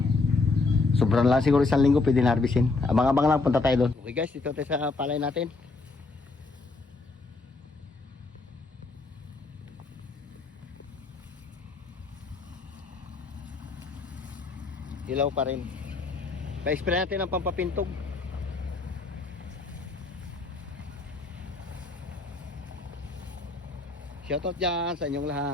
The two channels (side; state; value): right; quieter; 3.7 dB